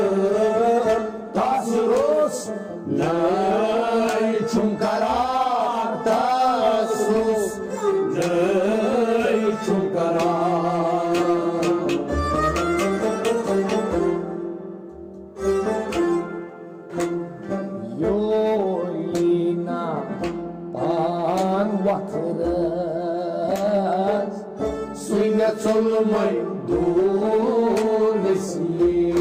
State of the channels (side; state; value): both; identical; correlation 1.00